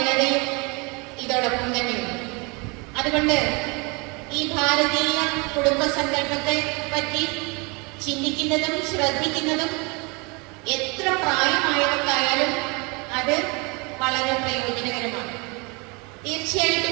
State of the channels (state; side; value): quieter; left; 29.5 dB